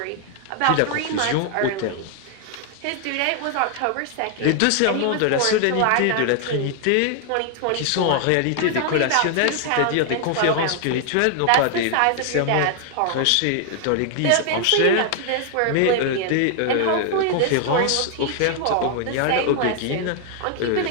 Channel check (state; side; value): different; both; correlation 0.00